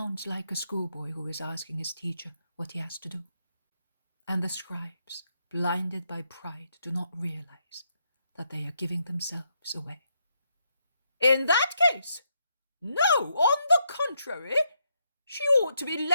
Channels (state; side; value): inverted; both; correlation -0.79